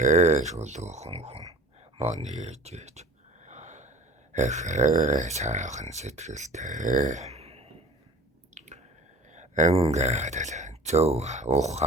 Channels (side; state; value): both; normal; correlation 0.43